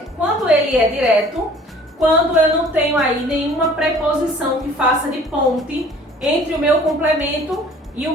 Quando ele é direto, quando eu não tenho aí nenhuma preposição que faça de ponte entre o meu complemento e o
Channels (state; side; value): normal; both; correlation 0.51